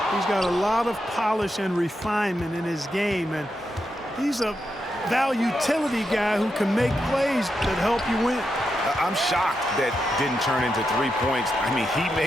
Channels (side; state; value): both; normal; correlation 0.85